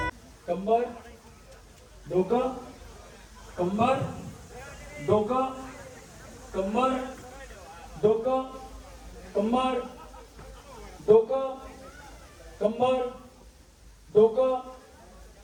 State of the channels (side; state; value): both; identical; correlation 1.00